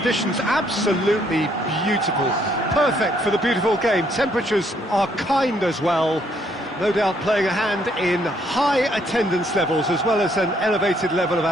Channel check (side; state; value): both; normal; correlation 0.69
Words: absolutely beautiful. Perfect for the beautiful game. Temperatures are kind as well. No doubt playing a hand in high attendance levels as well as an elevated level of